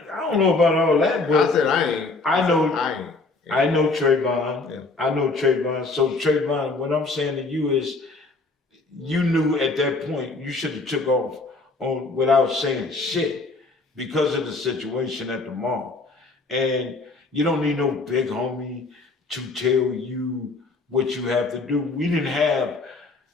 don't know about all that, but I said I ain't. I know. I ain't. I know Trayvon. Yeah. I know Trayvon. So Trayvon, what I'm saying to you is, you knew at that point you should have took off on without saying shit because of the situation at the mall. And you don't need no big homie to tell you what you have to do. We didn't have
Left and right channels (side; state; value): right; quieter; 3.6 dB